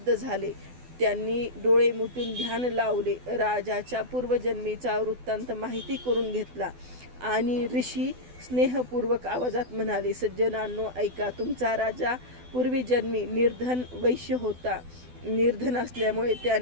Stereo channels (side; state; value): left; late; 12 ms